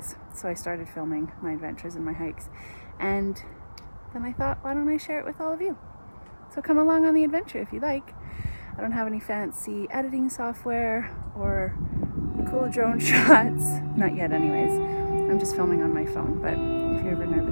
so I started filming my adventures and my hikes, and then I thought, why don't I share it with all of you? So come along on the adventure if you like. I don't have any fancy editing software or cool drone shots, not yet anyways. I'm just filming on my phone, but if you're ever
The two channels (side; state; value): both; inverted; correlation -1.00